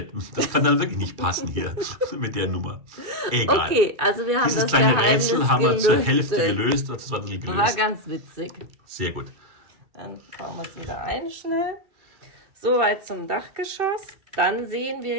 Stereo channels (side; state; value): left; late; 2.3 ms